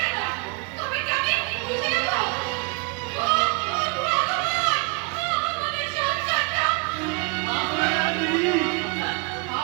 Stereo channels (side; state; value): left; quieter; 33.3 dB